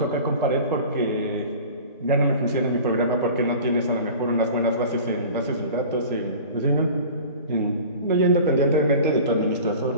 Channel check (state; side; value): inverted; both; correlation -0.40